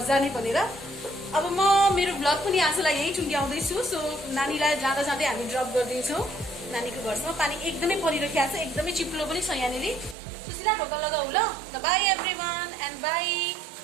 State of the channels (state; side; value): drops out; left; at 10.2 s